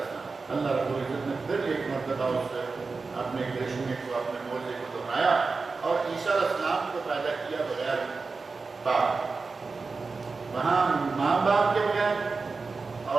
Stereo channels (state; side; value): quieter; left; 4.2 dB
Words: السلام. اللہ رب العزت نے پھر ایک مرتبہ اس سے اپنے کرشمے کو، اپنے معجزے کو دہرایا اور عیسیٰ علیہ السلام کو پیدا کیا بغیر باپ. وہاں ماں باپ کے بغیر،